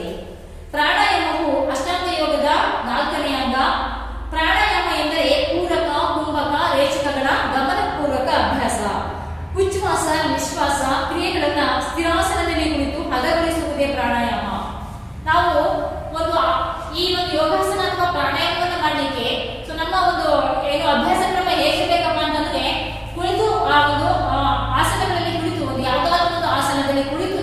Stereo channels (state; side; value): identical; both; correlation 1.00